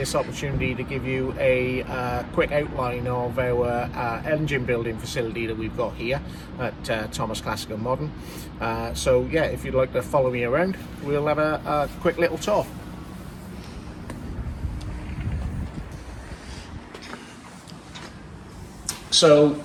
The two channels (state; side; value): identical; both; correlation 1.00